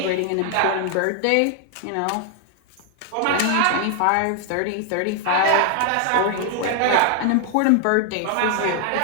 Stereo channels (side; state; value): both; different; correlation 0.00